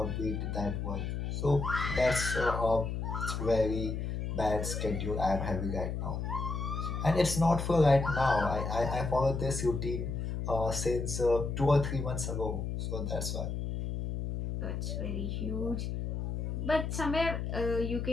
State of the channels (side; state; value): left; noise; hum, 3 dB below the sound